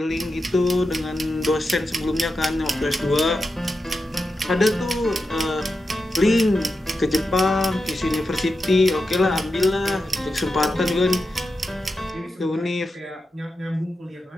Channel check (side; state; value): both; normal; correlation 0.89